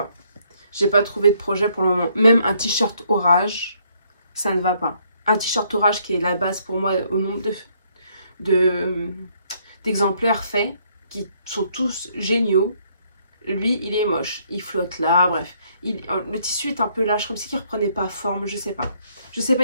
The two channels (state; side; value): inverted; both; correlation -0.68